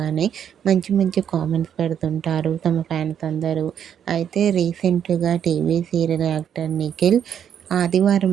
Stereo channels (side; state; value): left; quieter; 8.8 dB